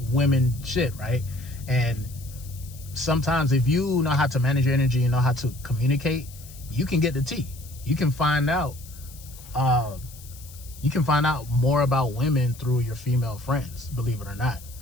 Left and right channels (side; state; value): left; noise; hiss, 19 dB below the sound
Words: women shit, right? And sometimes if you know how to manage your energy and know how to communicate, you can get the tea. You can find out more about women through your female friends, believe it or not.